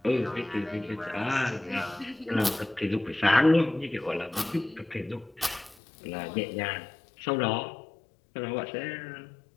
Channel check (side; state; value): right; drops out; at 5.8 s